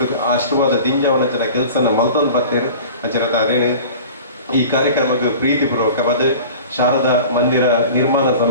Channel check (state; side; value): inverted; both; correlation -0.40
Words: ಆಶೀರ್ವಾದ ದಿಂಜವನಂಚಿನ ಕೆಲಸನ ಮಲ್ತೊಂದು ಬರ್ತೇನೆ ಅಂಚನ ಅದೇನು ಈ ಕಾರ್ಯಕ್ರಮಕ್ಕೆ ಪ್ರೀತಿಪೂರ್ವಕವಾದ ಶಾರದಾ ಮಂದಿರ ನಿರ್ಮಾಣ